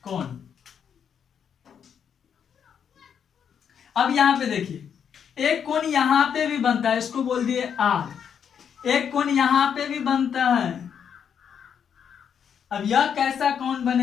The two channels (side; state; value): right; quieter; 7.8 dB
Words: कोण। अब यहाँ पे देखिए एक कोण यहाँ पे भी बनता है, इसको बोल दिए आर। एक कोण यहाँ पे भी बनता है। अब यह कैसा कोण